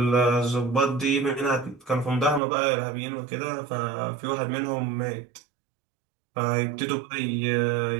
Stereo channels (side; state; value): left; drops out; at 2.4 s